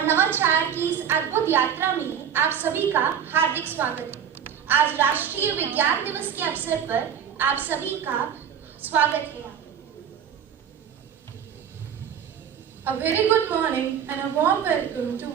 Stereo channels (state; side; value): quieter; left; 8.3 dB